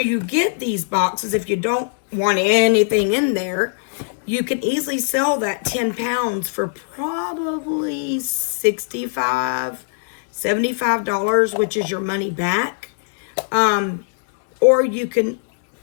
get these boxes if you don't want anything in there. You can easily sell that 10 pounds for probably $65, $75, which is your money back. Or you can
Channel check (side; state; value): right; silent; 66 dB below the other